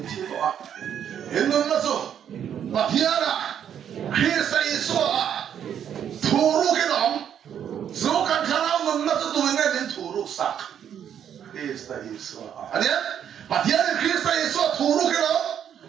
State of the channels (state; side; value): quieter; left; 9.1 dB